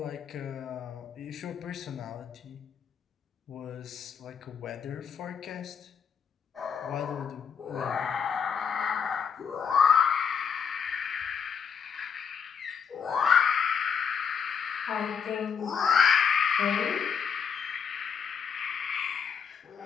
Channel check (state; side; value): quieter; right; 6.8 dB